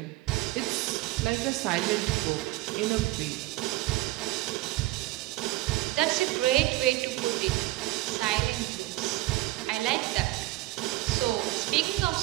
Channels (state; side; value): quieter; left; 18.7 dB